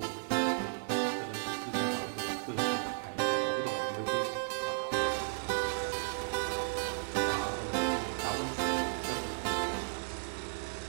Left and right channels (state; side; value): silent; left; digital silence